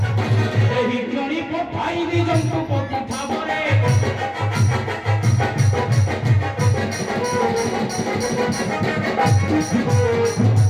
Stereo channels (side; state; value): both; identical; correlation 1.00